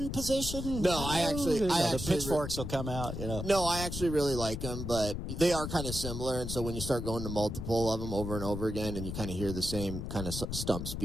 position. No, the pitchforks will come out. No, I actually really like them, but they are kind of similar. And so when you start going to multiple of them over and over again, and you kind of hear the same kind of stump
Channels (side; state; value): left; noise; rumble, 5 dB below the sound